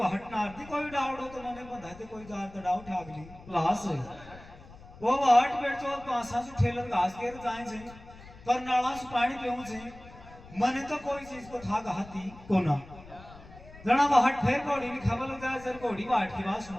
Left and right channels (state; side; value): noise; left; rumble, 19 dB below the sound